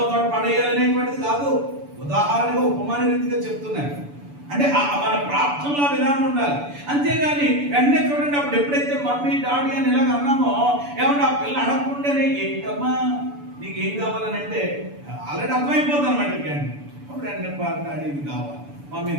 పడేయాలనేటువంటిది కాదు, ఉదాహరణగా ఉపమాన రీతిగా చెప్తున్నాను. అంటే మన ప్రార్థనలో విధానం ఉండాలి. అంతేగాని వెంటనే చూడండి, అప్పుడు ఎప్పుడైతే మమ్మీ డాడీ అని ఇలాగ అన్నామో ఏమన్నా ఆ పిల్ల అడగకుండానే ఏంటమ్మా నీకేం కావాలని అంటే ఆల్రెడీ అర్థమైపోతుంది అనమాట. కానీ అప్పుడు వెంటనే డాడీ ఇది కావాలి, మమ్మీ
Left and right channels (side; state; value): left; late; 7.0 ms